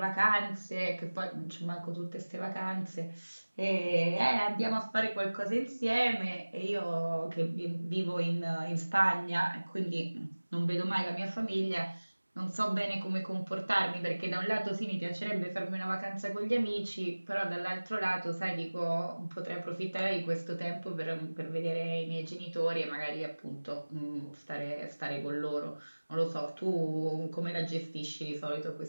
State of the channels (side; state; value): both; inverted; correlation -1.00